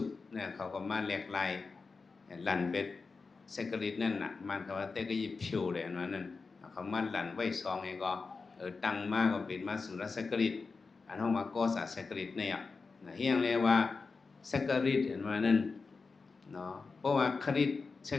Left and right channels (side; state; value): right; quieter; 4.4 dB